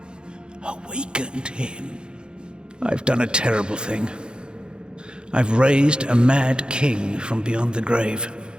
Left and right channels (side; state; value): left; late; 0.050 ms